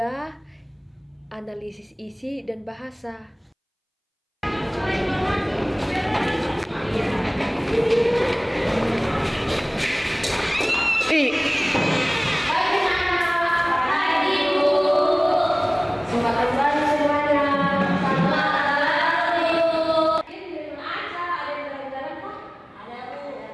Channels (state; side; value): identical; both; correlation 1.00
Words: analisis isi dan bahasa.